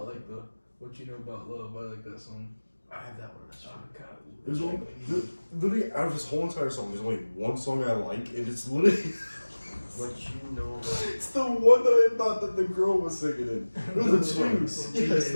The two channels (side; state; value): both; inverted; correlation -1.00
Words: like the What You Know About Love? I like that song. I have that one. That's Oh, true. God. There's only, literally, out of this whole entire song, there's only one song I like, and it's literally What you know about it's the one that I thought that the girl was singing in. There's a two. Yes,